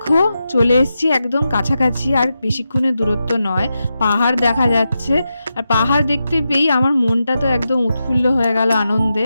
চলে এসেছি একদম কাছাকাছি, আর বেশিক্ষণের দূরত্ব নয়। পাহাড় দেখা যাচ্ছে, আর পাহাড় দেখতে পেয়েই আমার মনটা তো একদম উৎফুল্ল হয়ে গেল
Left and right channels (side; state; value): both; inverted; correlation -0.89